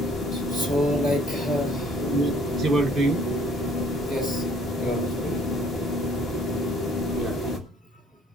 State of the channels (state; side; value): normal; both; correlation 0.59